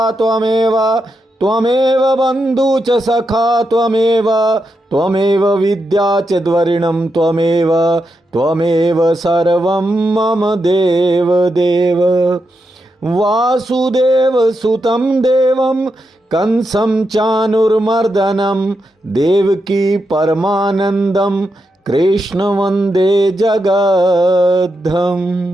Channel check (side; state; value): both; normal; correlation 0.85